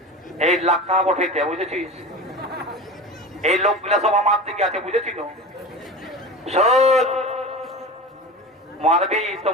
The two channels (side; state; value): both; normal; correlation 0.30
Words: এই লাখা বঠাইতে, বুঝেছিস? এই লোকগুলা সব আমার দিকে আছে, বুঝেছিল? শোন, মারবি তো